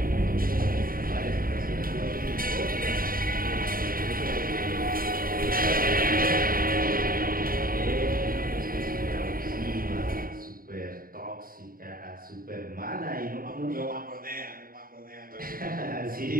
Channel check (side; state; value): left; late; 0.42 ms